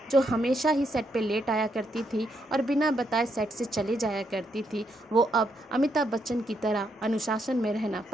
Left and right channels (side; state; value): both; normal; correlation 0.77